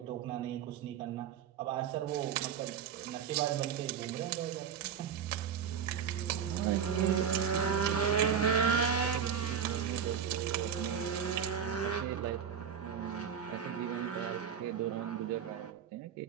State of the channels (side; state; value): left; quieter; 7.8 dB